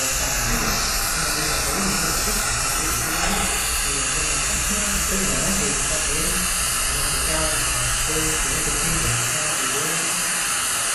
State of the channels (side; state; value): both; identical; correlation 1.00